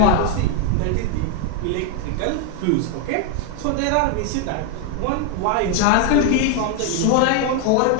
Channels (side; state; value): both; different; correlation 0.01